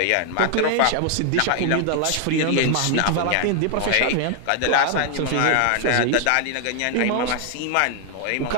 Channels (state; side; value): different; both; correlation 0.00